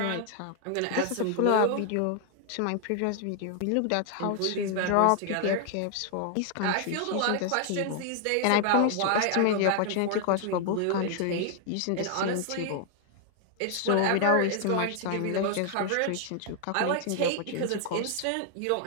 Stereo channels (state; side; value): different; both; correlation 0.00